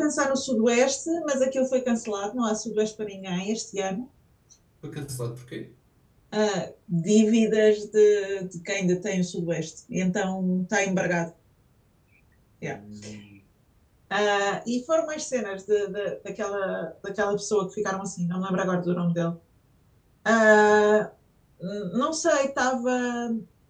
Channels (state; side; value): identical; both; correlation 1.00